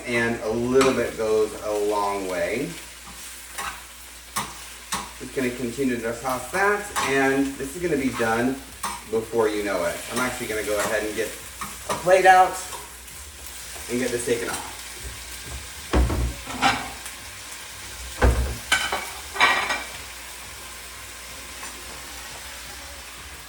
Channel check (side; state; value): both; identical; correlation 1.00